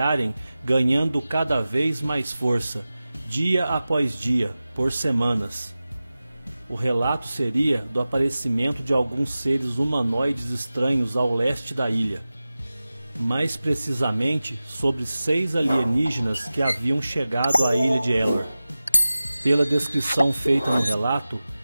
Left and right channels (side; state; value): both; inverted; correlation -0.96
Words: ganhando cada vez mais força, dia após dia, por semanas. O relato seria do aparecimento de alguns seres humanoides estranhos ao leste da ilha. Mais precisamente, sobre 6 alienígenas que haviam chegado à ilha de Elor. Pela descrição feita no relato,